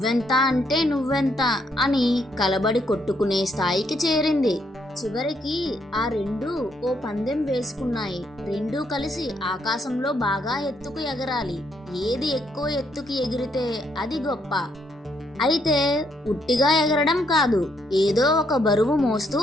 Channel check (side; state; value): both; normal; correlation 0.73